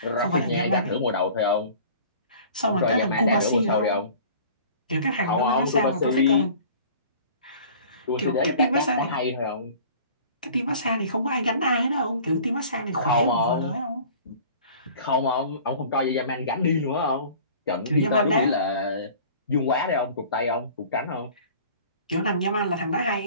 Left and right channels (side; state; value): both; inverted; correlation -0.46